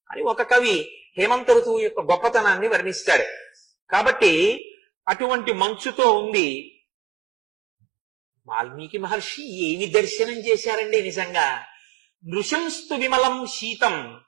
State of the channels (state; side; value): drops out; left; at 4.6 s